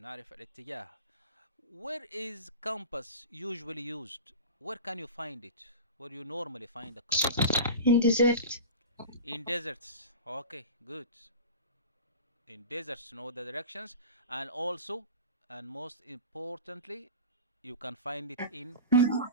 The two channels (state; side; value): inverted; both; correlation -0.32